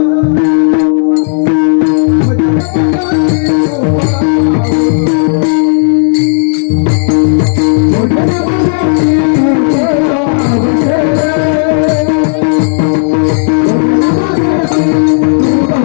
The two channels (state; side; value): silent; right; digital silence